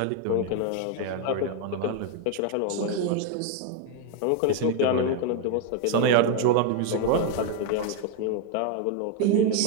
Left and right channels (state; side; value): different; both; correlation 0.01